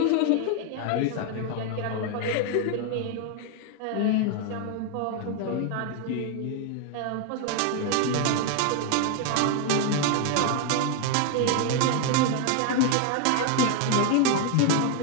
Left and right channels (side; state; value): both; different; correlation 0.01